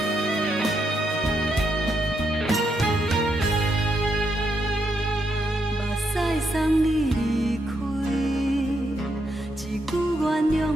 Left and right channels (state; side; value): normal; both; correlation 0.80